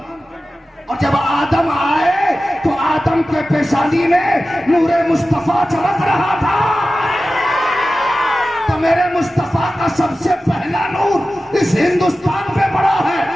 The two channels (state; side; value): normal; both; correlation 0.95